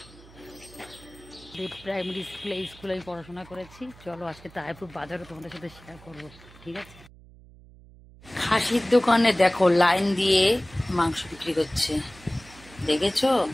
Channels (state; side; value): noise; right; hum, 22 dB below the sound